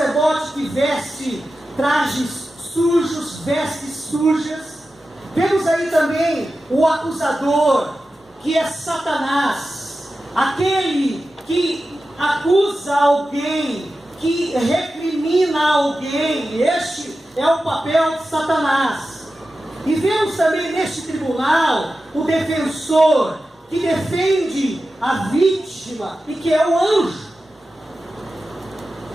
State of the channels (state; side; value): normal; both; correlation 0.93